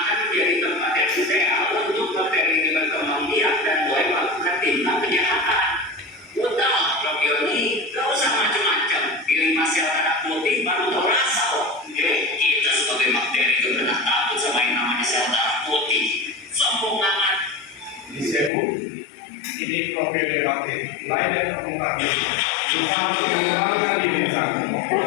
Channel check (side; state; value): right; drops out; at 18.5 s